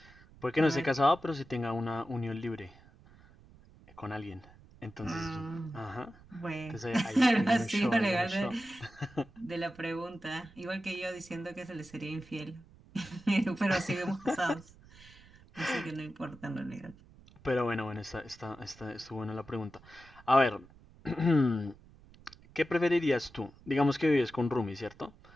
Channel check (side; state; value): right; noise; rumble, 24 dB below the sound